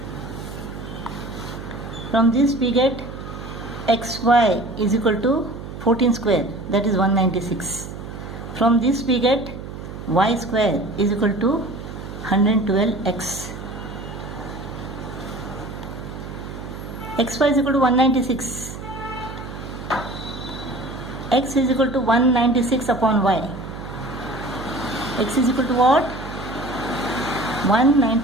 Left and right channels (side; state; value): right; noise; hum, 10 dB below the sound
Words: From this we get xy is equal to 14 square, that is 196. From this we get y square is equal to 112x. xy is equal to 196. X is equal to 196 upon y. X is equal to what?